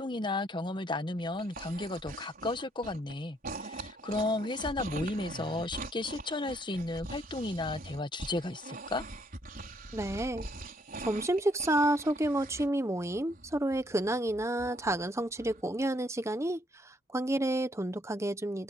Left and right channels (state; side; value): normal; both; correlation 0.70